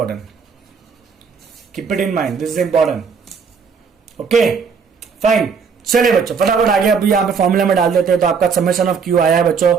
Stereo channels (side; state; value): left; quieter; 5.9 dB